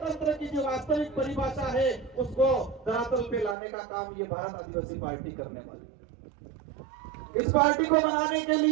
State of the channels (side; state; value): left; drops out; at 3.6 s